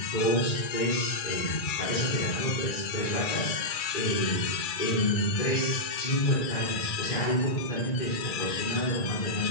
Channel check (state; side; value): late; right; 2.3 ms